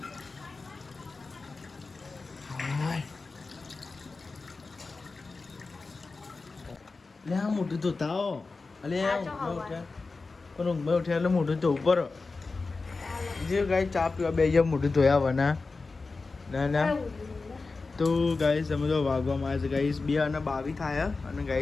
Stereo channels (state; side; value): quieter; right; 3.9 dB